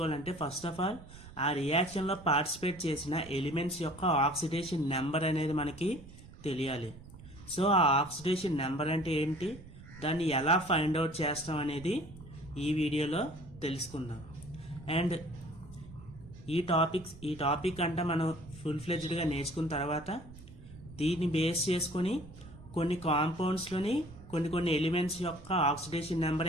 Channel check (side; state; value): right; noise; rumble, 17 dB below the sound